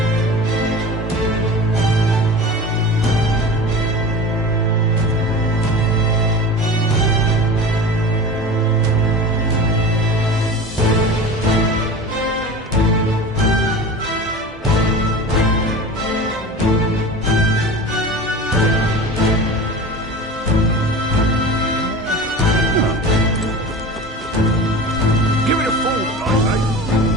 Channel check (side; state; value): both; normal; correlation 0.34